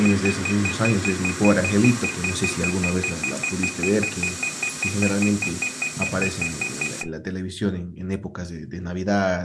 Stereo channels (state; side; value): identical; both; correlation 1.00